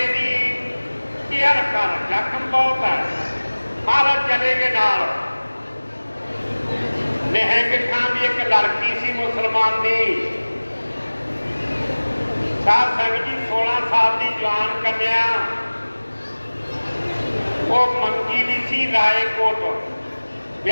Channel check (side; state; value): both; inverted; correlation -1.00